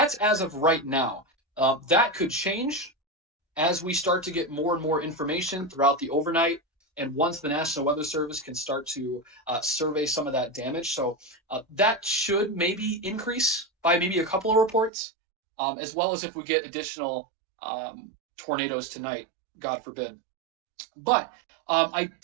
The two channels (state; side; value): drops out; left; at 14.9 s